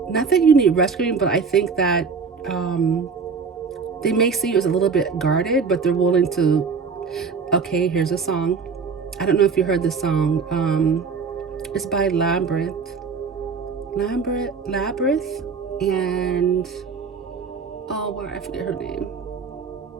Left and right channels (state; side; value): quieter; left; 5.3 dB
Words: not that you need rescuing, but I think that they may see you as a little bit guarded, but they're willing to. Okay, here's a song. I don't know if you heard this song. It's by Labyrinth, and I forget her name.